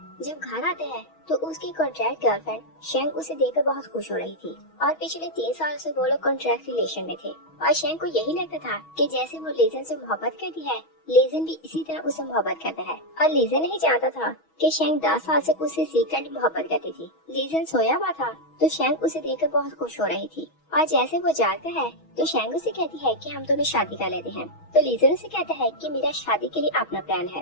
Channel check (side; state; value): right; late; 6.2 ms